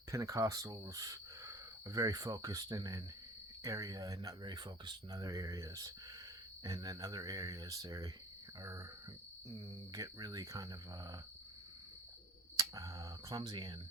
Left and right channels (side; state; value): both; normal; correlation 0.48